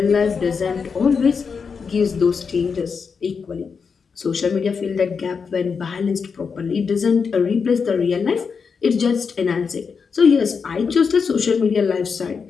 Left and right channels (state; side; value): quieter; right; 5.7 dB